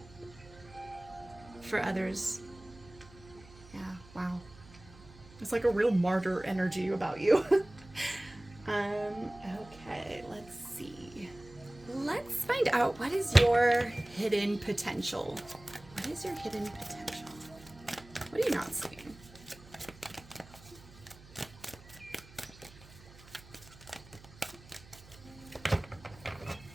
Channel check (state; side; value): noise; right; hum, 21 dB below the sound